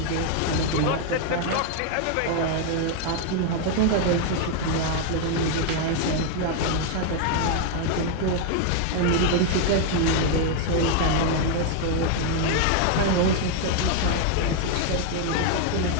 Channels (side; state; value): both; different; correlation 0.00